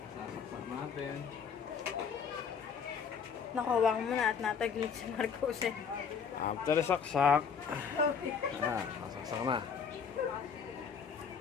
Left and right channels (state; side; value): quieter; right; 6.5 dB